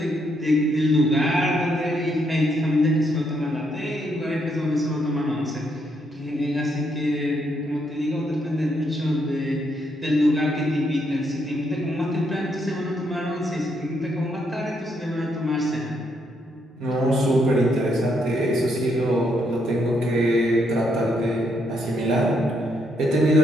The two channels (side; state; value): both; normal; correlation 0.76